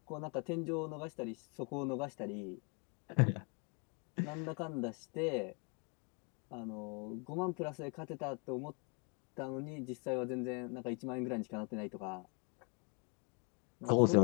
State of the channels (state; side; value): quieter; right; 35.1 dB